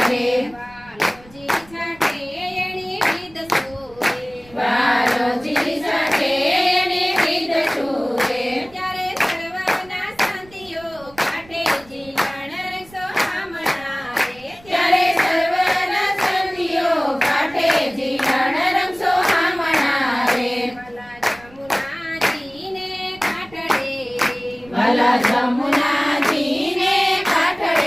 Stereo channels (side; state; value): right; noise; rumble, 24 dB below the sound